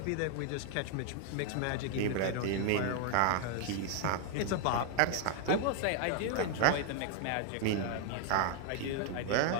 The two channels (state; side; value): different; both; correlation 0.00